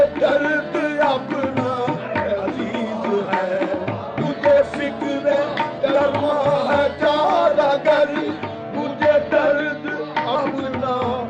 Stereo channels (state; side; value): identical; both; correlation 1.00